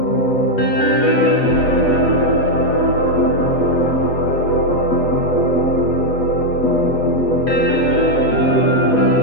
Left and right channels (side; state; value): right; late; 8.1 ms